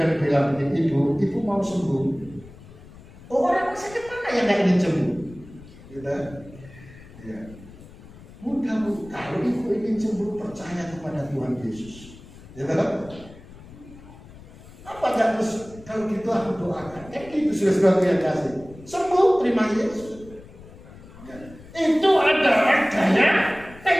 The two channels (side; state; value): left; noise; rumble, 19 dB below the sound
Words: bilang ibu mau sembuh. Oh, orang sakit mana yang gak ingin sembuh? Gitu. Ya. Mudah Bu, kalau ibu ingin sembuh percaya kepada Tuhan Yesus. Gitu. Apa gak terus kalau gitu aku doakan? Kan itu sudah yang kasih. Sembuh, terima Yesus. Itu adalah gaya